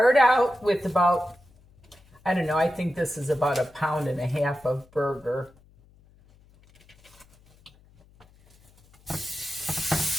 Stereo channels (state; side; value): noise; left; hum, 29 dB below the sound